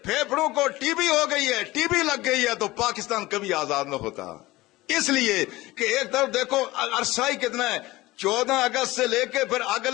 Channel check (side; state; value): right; quieter; 19.0 dB